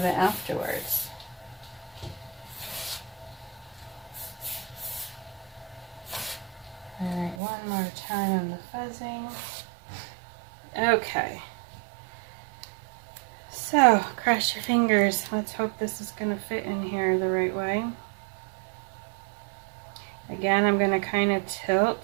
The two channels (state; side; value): drops out; left; at 7.4 s